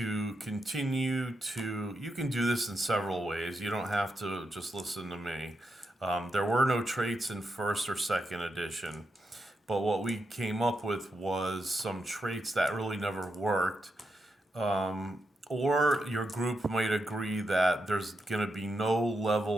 continue to. You can do this in several ways. You don't have to just listen to me. There were no traits in first or second edition, but what we came up with was some traits that really never worked. Or your group might agree that there's going to be no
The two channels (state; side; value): normal; both; correlation 0.85